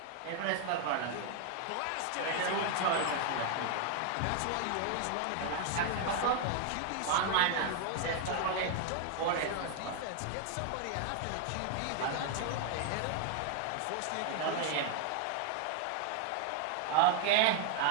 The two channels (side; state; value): both; different; correlation 0.00